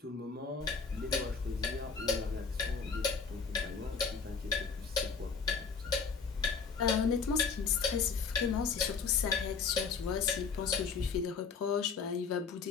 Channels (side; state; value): right; quieter; 5.4 dB